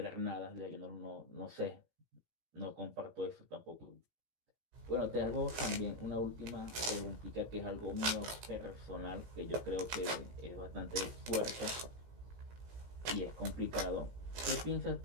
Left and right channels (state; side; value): late; left; 17 ms